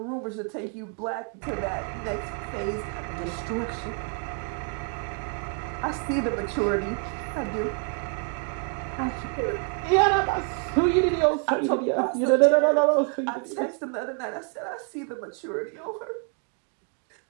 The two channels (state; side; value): quieter; left; 39.5 dB